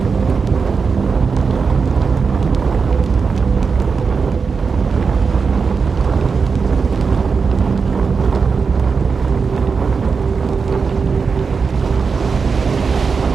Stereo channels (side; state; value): left; quieter; 5.2 dB